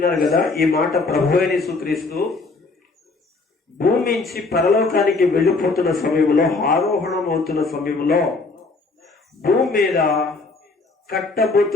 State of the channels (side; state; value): right; quieter; 3.8 dB